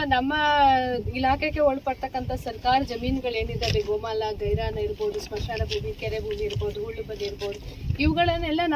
ನಮ್ಮ ಇಲಾಖೆಗೆ ಒಳಪಡ್ತಕ್ಕಂಥ ಸರ್ಕಾರಿ ಜಮೀನುಗಳೇನಿದ್ದಾವೆ, ಗೋಮಾಲ, ಗೈರಾನ ಇರ್ಬೋದು, ಸ್ಮಶಾನ ಭೂಮಿ, ಕೆರೆ ಭೂಮಿ ಇರ್ಬೋದು, ಹುಳ್ಳು ಬದಿ ಇರ್ಬೋದು, ಇವುಗಳನ್ನೆಲ್ಲ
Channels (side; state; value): both; identical; correlation 1.00